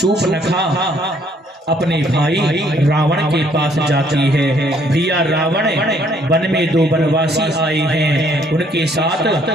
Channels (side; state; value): both; normal; correlation 0.65